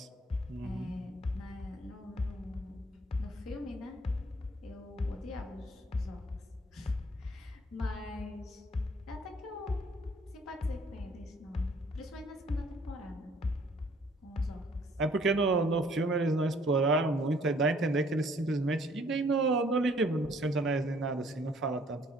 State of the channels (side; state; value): both; normal; correlation 0.60